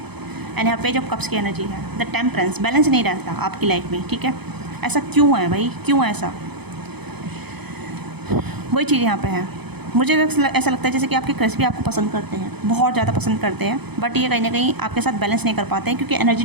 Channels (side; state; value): left; late; 0.98 ms